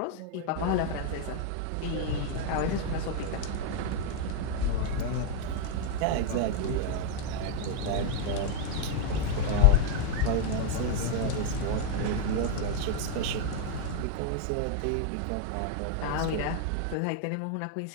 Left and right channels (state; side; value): different; both; correlation 0.00